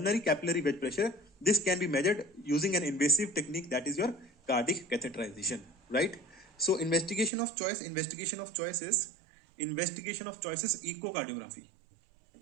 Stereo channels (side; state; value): left; drops out; at 7.3 s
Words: capillary wedge pressure, this can be measured using an invasive technique, that is your cardiac catheterization. Right. So investigation of choice is echocardiography.